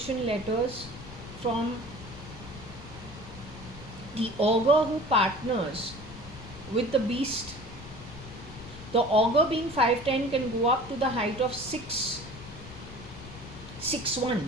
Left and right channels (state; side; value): noise; left; rumble, 15 dB below the sound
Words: letters from the augur who partners with the beast. The augur being 5'10" can go up to the height of 6'1".